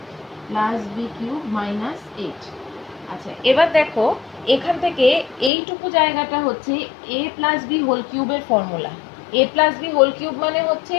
প্লাস b³ মাইনাস 8। আচ্ছা এবার দেখো এখান থেকে এইটুকু জায়গাটা হচ্ছে a প্লাস বি হোল কিউবের formula, a plus B whole cube মানে হচ্ছে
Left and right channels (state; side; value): drops out; right; at 5.5 s